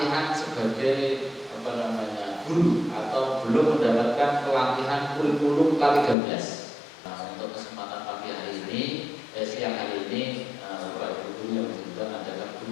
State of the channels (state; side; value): drops out; right; at 6.2 s